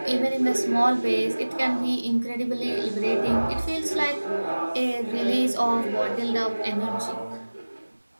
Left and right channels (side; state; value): both; inverted; correlation -1.00